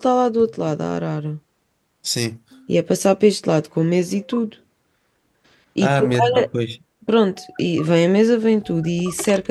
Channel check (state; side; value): identical; both; correlation 1.00